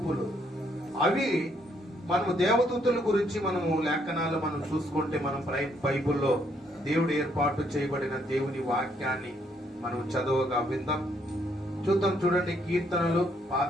అవి మనము దేవదూతల గురించి మనము లేఖనాలు మనం చూసుకుంటే, మనం బైబిల్లో దేవుడు ఏర్పాటు చేయబడిన దేవుని వాక్యాన్ని మనం చదవగా విందాం. చూడండి. కీర్తనలు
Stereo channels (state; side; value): normal; both; correlation 0.71